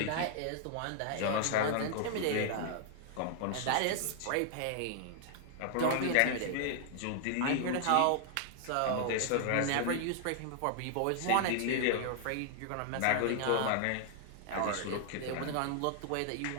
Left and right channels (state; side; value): different; both; correlation 0.00